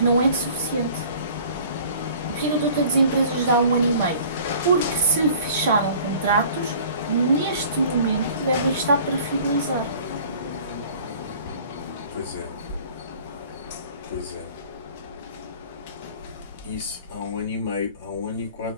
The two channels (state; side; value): inverted; both; correlation -0.49